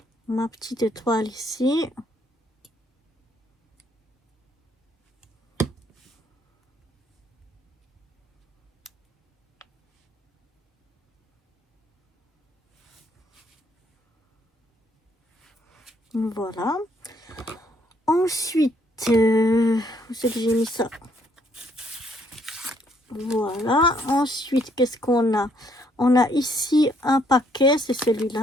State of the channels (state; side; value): normal; both; correlation 0.68